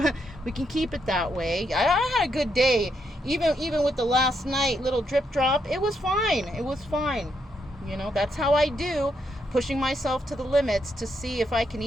we can keep it that way. I had a good day. Even with the last night little drip drop, it was fine. It was fine. You know, that's how I do, pushing myself to the limits to see if I can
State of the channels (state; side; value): normal; both; correlation 0.79